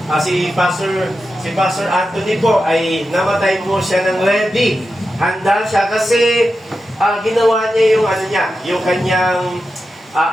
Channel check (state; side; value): normal; both; correlation 0.90